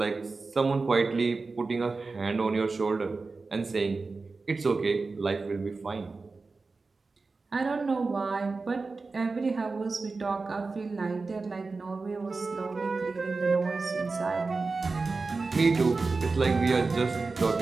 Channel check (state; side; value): quieter; left; 4.0 dB